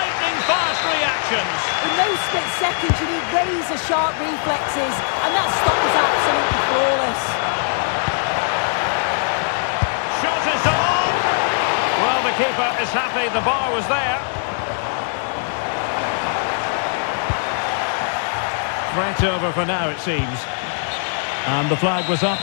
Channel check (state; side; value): silent; right; 65 dB below the other